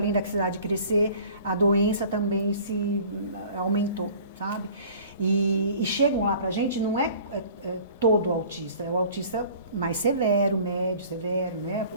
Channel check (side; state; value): both; inverted; correlation -0.47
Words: da cidade crescer, a doença também se aumentou, sabe? E chegam lá pra gente, não é todo autista, é o autista mais severo, médio, severo, né?